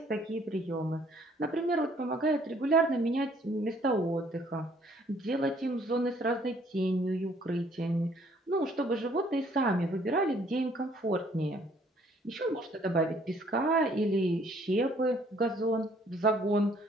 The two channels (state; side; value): normal; both; correlation 0.62